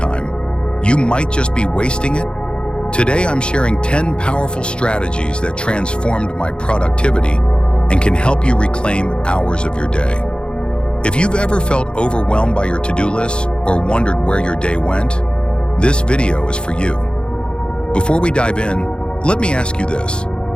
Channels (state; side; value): late; right; 0.053 ms